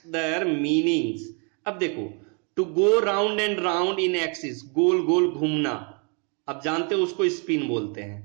their meanings. अब देखो, to go round and round in axis, गोल गोल घूमना, अब जानते हो उसको स्पिन बोलते हैं।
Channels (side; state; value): left; quieter; 36.9 dB